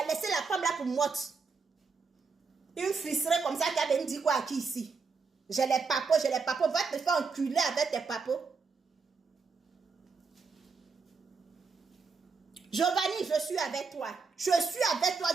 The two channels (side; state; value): left; quieter; 4.9 dB